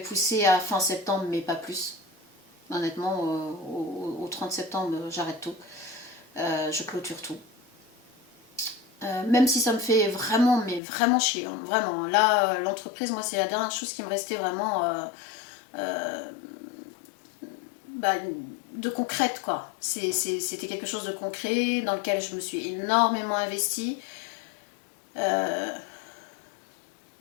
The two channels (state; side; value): drops out; right; at 10.8 s